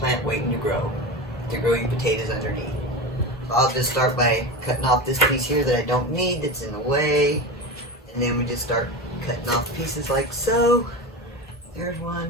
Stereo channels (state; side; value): normal; both; correlation 0.24